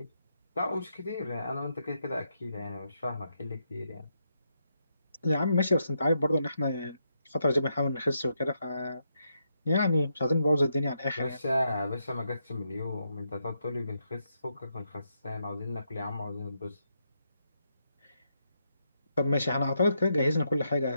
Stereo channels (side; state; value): both; inverted; correlation -0.81